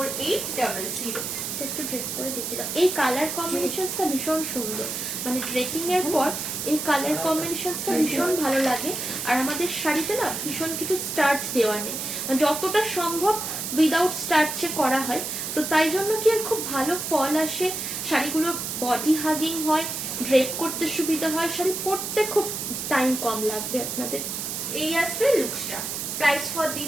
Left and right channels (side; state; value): right; noise; hiss, 4 dB below the sound